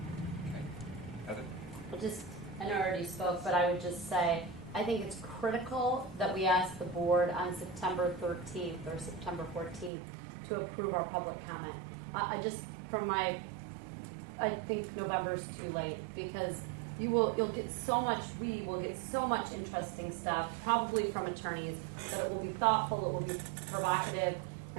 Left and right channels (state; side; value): drops out; left; at 9.9 s